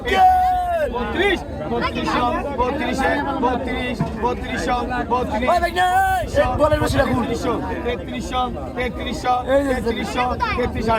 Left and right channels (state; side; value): identical; both; correlation 1.00